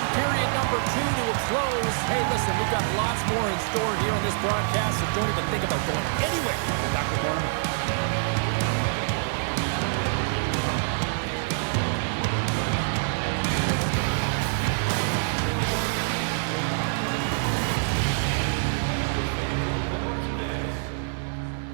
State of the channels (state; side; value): silent; left; 60 dB below the other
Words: period number 2 to a close. Hey, listen, we've got lots more in store here on this broadcast, so don't even think about going anywhere. We're back with more in a moment.